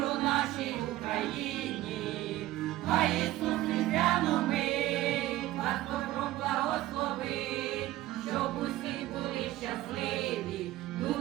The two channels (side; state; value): left; quieter; 16.0 dB